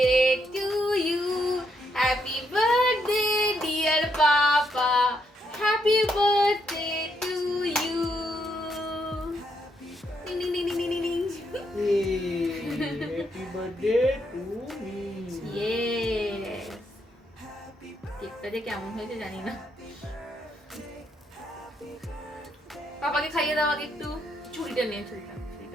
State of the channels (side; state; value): both; normal; correlation 0.77